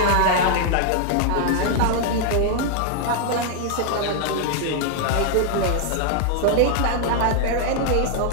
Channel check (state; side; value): different; both; correlation 0.00